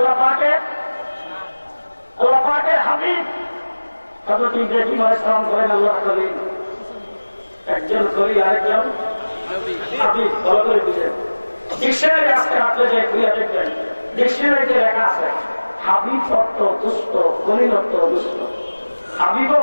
পাকের হাবিব। হযরত ইব্রাহিম আলাইহিস সালাম বলেন আল্লাহর খলিল। একজন খলিল, আরেকজন হাবিব। ভালো করে বুঝেন। ডিকশনারি আজকে হাতে যে খুলে দেখবেন, ডিকশনারিতে লেখা আছে হাবিব অর্থ দুষ্ট, খলিল অর্থ দুষ্ট। হাবিবও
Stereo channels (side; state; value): both; inverted; correlation -1.00